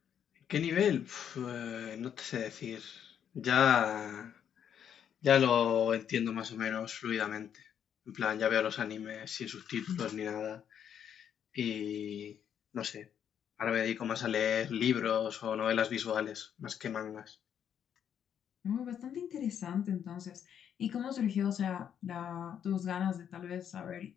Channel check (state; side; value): quieter; right; 8.8 dB